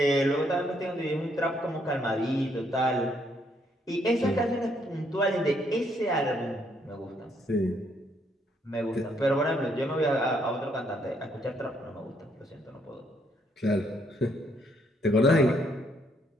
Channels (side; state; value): both; normal; correlation 0.71